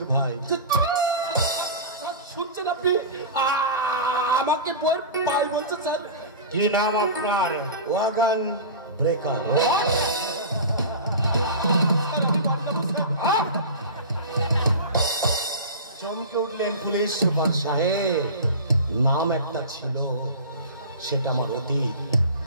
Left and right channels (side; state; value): both; inverted; correlation -0.31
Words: ভাই। শুনছেন আপনি? আমাকে বইয়ের পাই বলছে স্যার। কি নাম আপনার? Wagon breaker. চমকে উঠলেন পুলিশ সুপার সাহেব। নাম একটা ছিল, সেটা আমার অতীত।